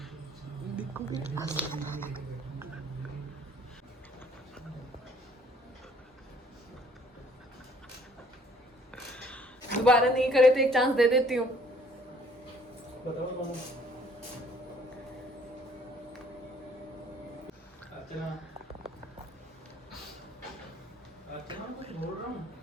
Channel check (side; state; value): both; normal; correlation 0.59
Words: देखो दोबारा नहीं करे तो एक चांस दे देती हूँ। बताओ कौन? अर्चना, अर्चना कुछ बोल रहा हूँ।